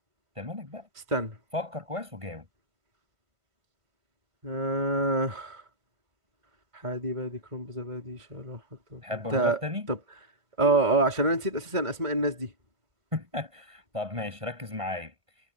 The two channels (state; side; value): late; left; 1.5 ms